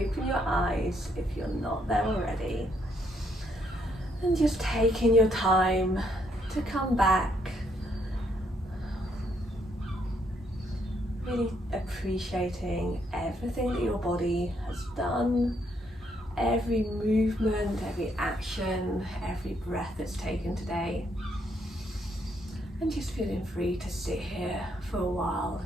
your eyes if you're not there already, and just taking your time to come back, really appreciating everything that your body has done, every movement, every action, every breath that's taken today. And just feeling free to sit here for a while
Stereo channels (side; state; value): both; normal; correlation 0.73